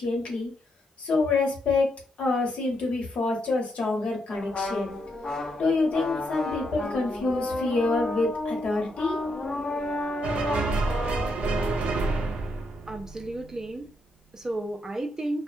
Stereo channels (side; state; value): both; normal; correlation 0.79